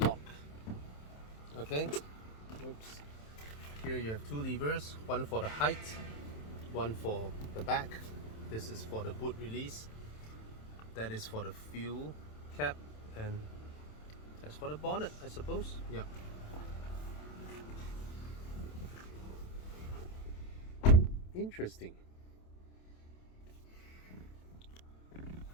Okay, oops. Here you have two levers, one for the height, one for the back. This is for the boot release, that is for the fuel cap, and that's for the bonnet, I suppose. Yeah. Interesting.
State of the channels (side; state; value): right; late; 27 ms